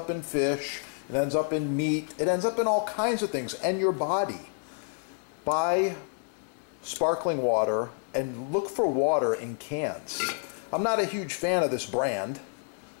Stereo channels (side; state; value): right; silent; 59 dB below the other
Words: in fish, it ends up in meat, it ends up in all kinds of things, and your body. Buy sparkling water and look for water in cans. I'm not a huge fan of this brand,